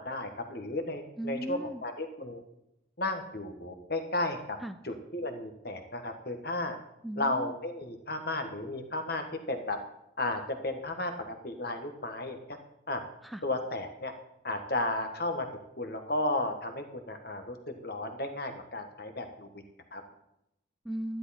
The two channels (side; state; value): both; normal; correlation -0.20